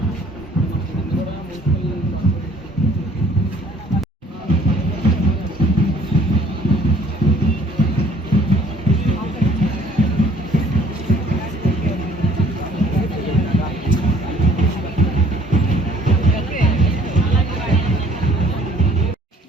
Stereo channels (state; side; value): normal; both; correlation 0.57